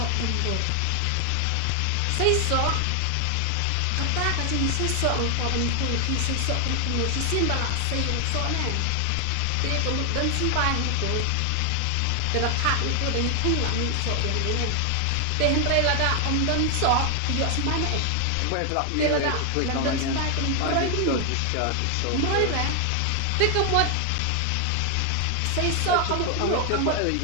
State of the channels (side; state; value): both; different; correlation 0.00